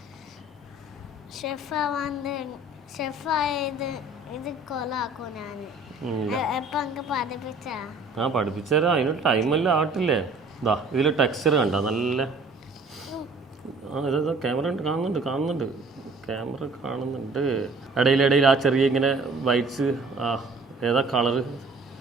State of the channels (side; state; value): left; quieter; 3.1 dB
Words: പഠിപ്പിച്ചുതരാം, അതിനൊരു ടൈമെല്ലാം ആട്ടില്ലേ. ഇതാ ഇതിൽ ടെക്സ്ചർ കണ്ട നല്ല ഇതാ ക്യാമറ കാണുന്നുണ്ട് ഇടയിൽ ആ ചെറിയ ഇങ്ങനെ വൈറ്റ്സ് ഏതാ കളറ്